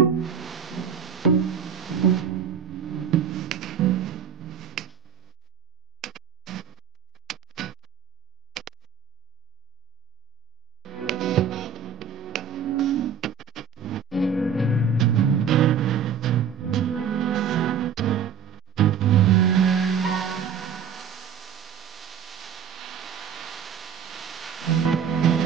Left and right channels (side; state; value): left; quieter; 7.4 dB